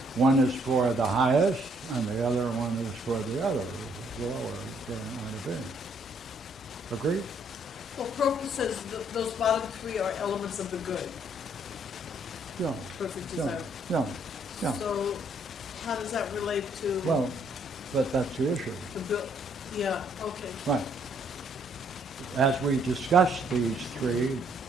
one is for the highest and the other one is for the other, lower, brilliant light of being. Agreed? Well, Proclus says those bottom three are elements of the good, Yeah. perfect Yeah. desire. Yeah. Yeah. So how does that relate to Well, but that's the issue. the bill? Yeah, okay. Right. As we discuss these three,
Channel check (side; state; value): both; normal; correlation 0.67